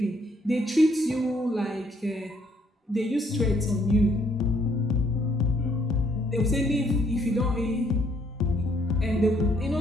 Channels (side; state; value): both; normal; correlation 0.68